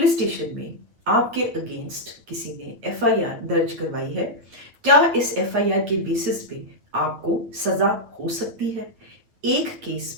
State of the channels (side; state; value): left; late; 9.2 ms